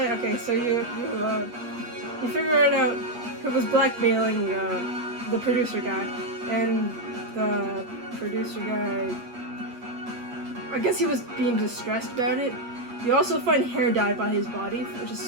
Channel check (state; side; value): late; left; 8.4 ms